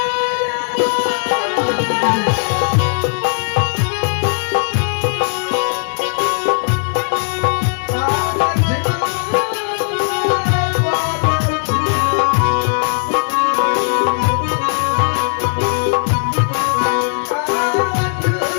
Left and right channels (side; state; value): right; silent; 68 dB below the other